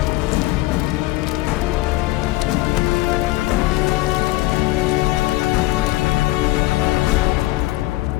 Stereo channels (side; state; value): right; quieter; 18.7 dB